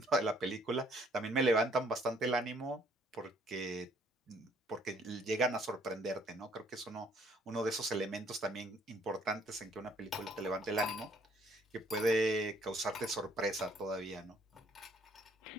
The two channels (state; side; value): normal; both; correlation 0.63